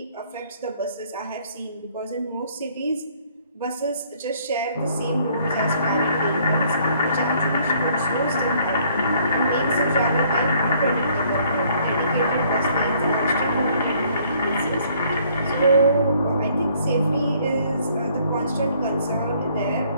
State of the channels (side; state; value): both; inverted; correlation -0.63